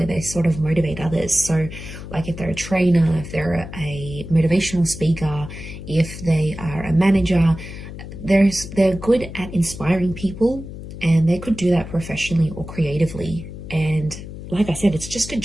they sort of motivate others. So like if they're a trainer, if they're a motivational speaker, if they are a manager, they're good at inspiring people, and they could do that professionally or creatively. And like I said, it's just a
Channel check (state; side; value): noise; left; hum, 11 dB below the sound